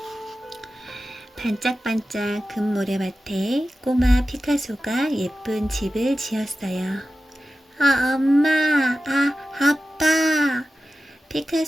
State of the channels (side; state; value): both; normal; correlation 0.94